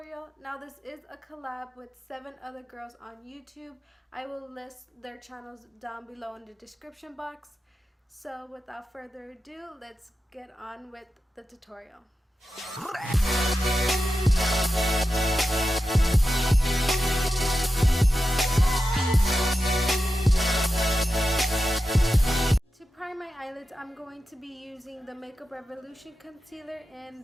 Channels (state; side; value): normal; both; correlation 0.91